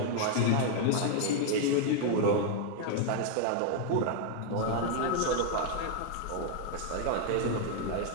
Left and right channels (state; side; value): different; both; correlation 0.00